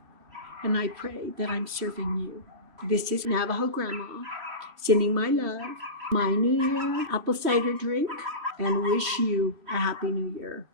And I pray that I'm serving you. This is Navajo Grandma, sending my love, my New Year apple cider drink, and wish you a happy New Year.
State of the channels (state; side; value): late; left; 3.0 ms